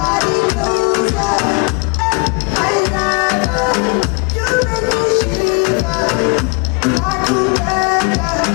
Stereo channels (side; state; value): right; quieter; 31.9 dB